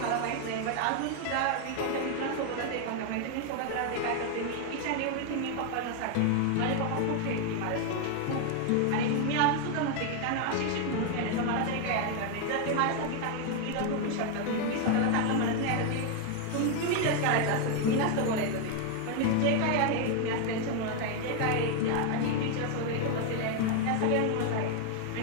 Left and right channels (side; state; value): both; different; correlation 0.01